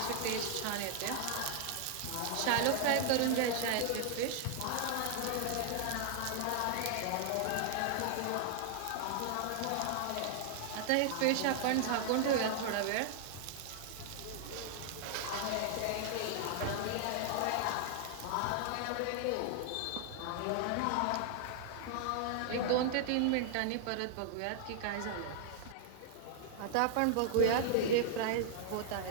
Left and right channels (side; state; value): both; different; correlation -0.01